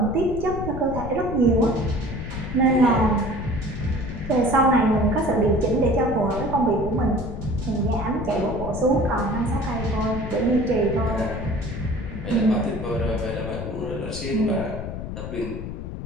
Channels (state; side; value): noise; left; rumble, 7 dB below the sound